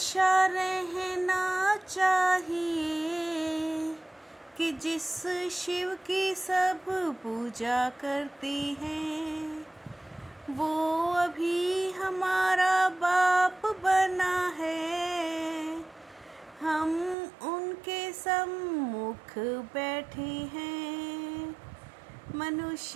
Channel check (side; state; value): left; drops out; at 17.2 s